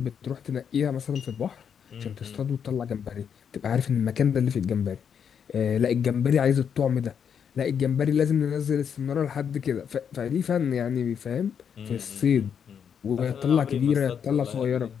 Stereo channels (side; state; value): right; quieter; 7.6 dB